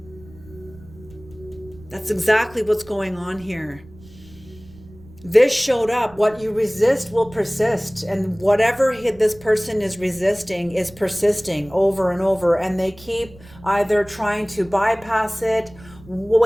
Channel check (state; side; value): noise; right; rumble, 22 dB below the sound